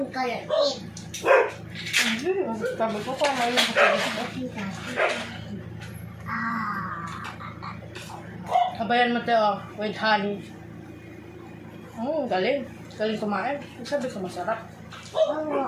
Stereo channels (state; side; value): identical; both; correlation 1.00